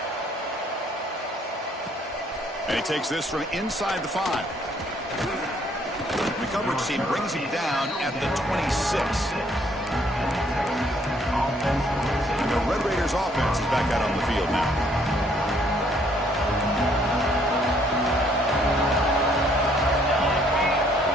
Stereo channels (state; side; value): normal; both; correlation 0.65